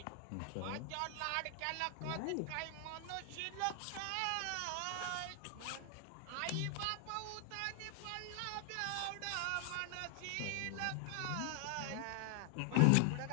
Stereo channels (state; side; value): different; both; correlation 0.00